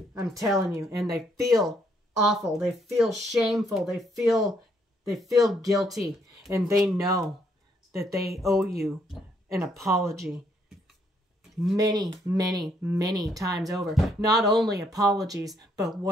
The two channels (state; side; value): normal; both; correlation 0.71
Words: I'm telling you. And they feel awful. They feel shameful. They feel guilty. And they know that they owe you an apology many, many, many times over. Not only apologies, but